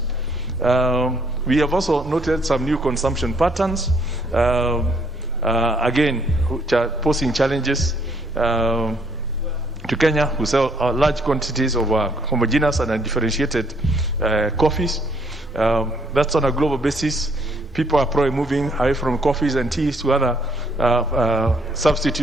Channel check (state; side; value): normal; both; correlation 0.67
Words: we have also noted some new consumption patterns, again, which are posing challenges to Kenya, who sell large quantities of homogeneous and undifferentiated coffees. That's on a global basis. People are probably moving away from coffees and teas to other